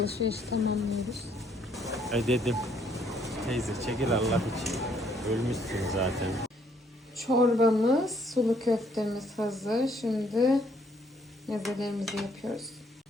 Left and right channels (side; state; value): both; normal; correlation 0.67